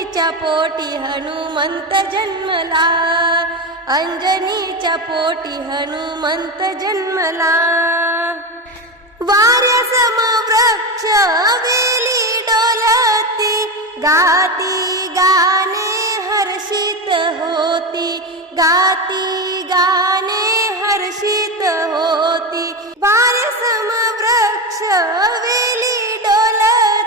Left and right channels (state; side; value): normal; both; correlation 0.17